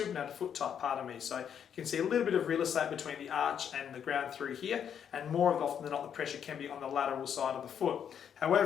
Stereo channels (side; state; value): right; quieter; 8.3 dB